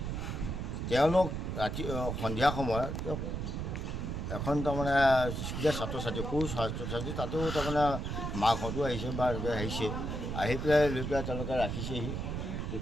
তেওঁলোক ৰাতি সন্ধিয়া সময়ত এখন তাৰমানে স্কুলীয়া ছাত্ৰ ছাত্ৰী সৰু ছাত্ৰ ছাত্ৰী তাতো তাৰমানে মাকহঁতো আহিছে বা আহিছে আহি পেলাই লৈ পেলাই তেওঁলোকে ৰাখিছেহি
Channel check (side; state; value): right; noise; rumble, 3 dB below the sound